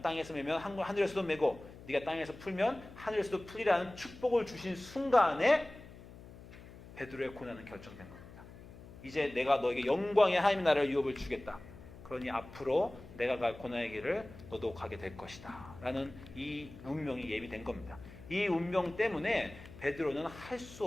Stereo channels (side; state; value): left; noise; hum, 17 dB below the sound